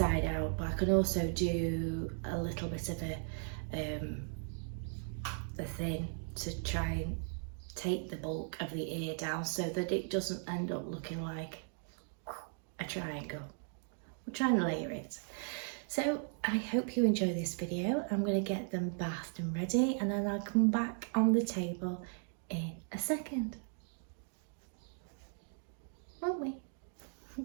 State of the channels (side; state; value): left; silent; 53 dB below the other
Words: out, but I can also do a little bit of a thin to try and take the bulk of the ear down so that it doesn't end up looking like a triangle. We'll try and layer it. So I hope you enjoy this video. I'm going to get them bathed and ready, and then I'll come back on the table in a second. Won't we?